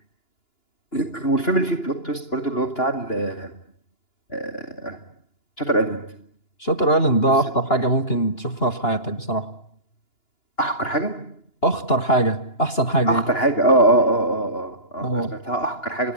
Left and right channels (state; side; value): late; right; 2.9 ms